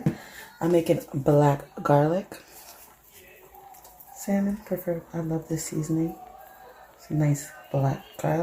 I'm making black garlic. Salmon, prefer. I love this seasoning. Some nice black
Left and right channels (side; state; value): both; identical; correlation 1.00